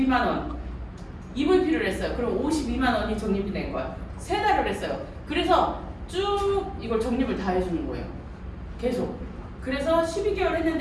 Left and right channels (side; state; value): both; identical; correlation 1.00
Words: 원 EVP를 했어요. 그럼 52만 원이 적립이 된 거야. 세 달을 했어요. 그래서 쭉 이걸 적립을 다 해주는 거예요. 계속. 그래서 12개월